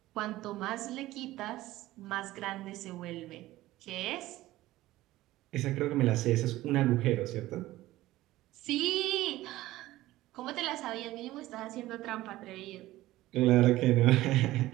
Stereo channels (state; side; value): quieter; left; 16.6 dB